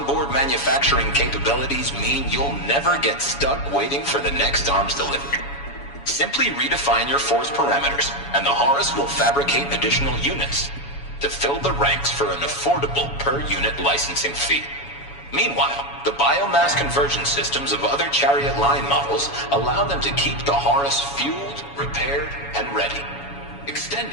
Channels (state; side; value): late; right; 7.1 ms